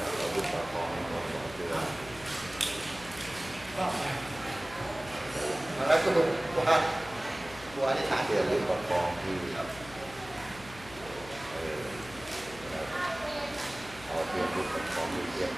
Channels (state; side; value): noise; left; hum, 17 dB below the sound